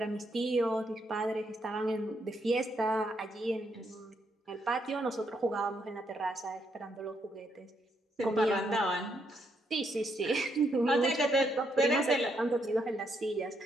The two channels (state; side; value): normal; both; correlation 0.76